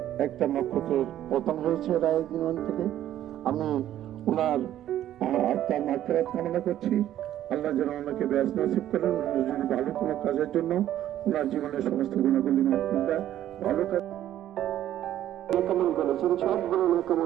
একটা নক্ষত্রের পতন হয়েছে রায়দিন থেকে। আমি ওনার আত্মার মাগফিরাত কামনা করছি। আল্লাহ যেন ওনাকে ব্যস্ত নসিব করেন। উনি যদি ভালো কোনো কাজের জন্য ওনার জীবনের সমস্ত গুণাগুলি মাফ করে দেয়। ভালো কাজ কবুল করেছেন, সবগুলো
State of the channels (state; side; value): quieter; left; 12.2 dB